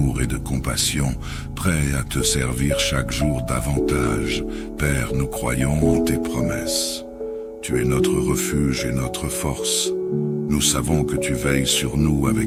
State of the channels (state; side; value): identical; both; correlation 1.00